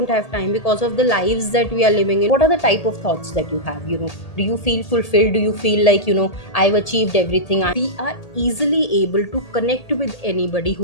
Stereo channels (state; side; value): late; right; 1.8 ms